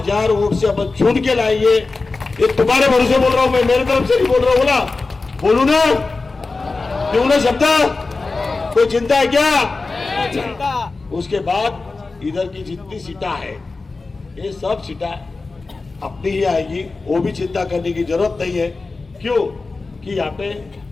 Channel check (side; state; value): right; quieter; 3.8 dB